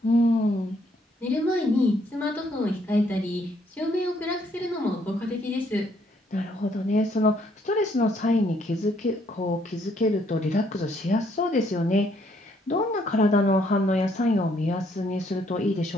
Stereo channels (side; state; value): both; normal; correlation 0.69